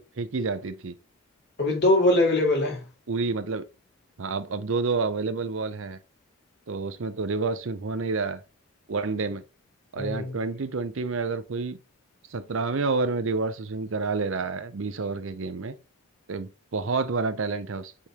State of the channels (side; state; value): both; normal; correlation 0.06